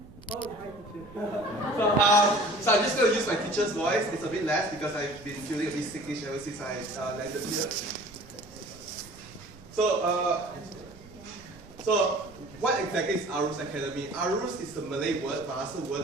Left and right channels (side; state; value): right; noise; rumble, 20 dB below the sound